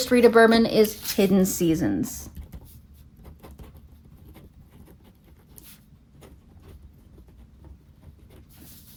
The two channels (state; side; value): identical; both; correlation 1.00